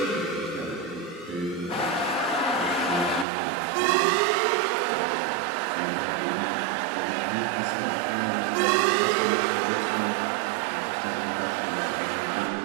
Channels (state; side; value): drops out; left; at 3.2 s